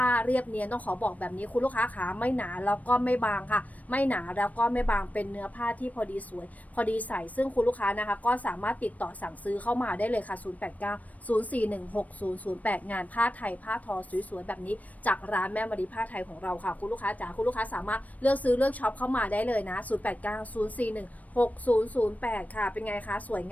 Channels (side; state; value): right; late; 0.071 ms